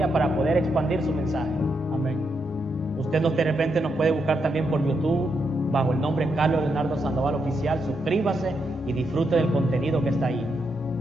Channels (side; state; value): both; normal; correlation 0.81